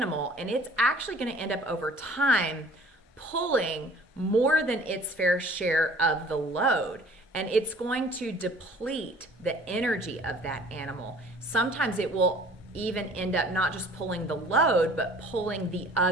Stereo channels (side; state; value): both; normal; correlation 0.50